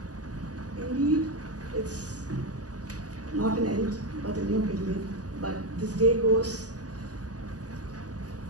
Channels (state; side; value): late; left; 0.67 ms